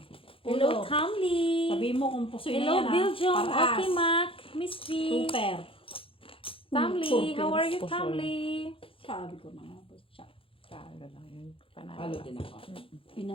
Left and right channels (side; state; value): right; late; 0.26 ms